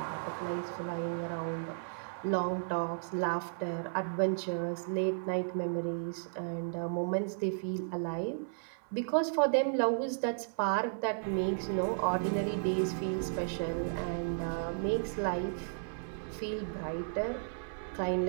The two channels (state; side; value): silent; left; 55 dB below the other